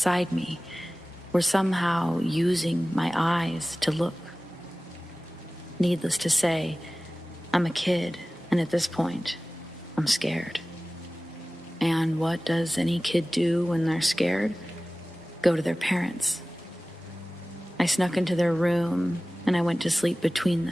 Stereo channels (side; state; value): both; normal; correlation 0.98